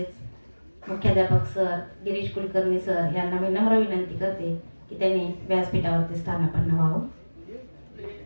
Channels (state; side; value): inverted; both; correlation -1.00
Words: मुख्याध्यापक सर गिरीश कुलकर्णी सर यांना मी नम्र विनंती करते की त्यांनी व्यासपीठावरती स्थानापन्न व्हावं.